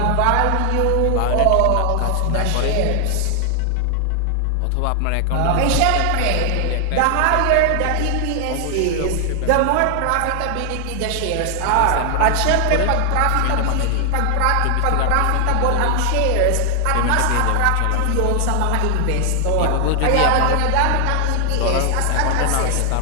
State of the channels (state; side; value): different; both; correlation 0.00